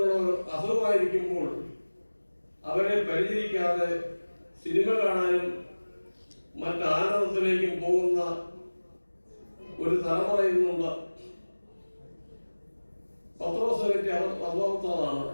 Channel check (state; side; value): inverted; both; correlation -1.00